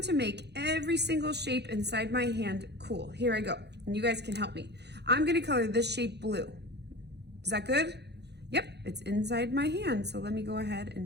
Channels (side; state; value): left; late; 0.49 ms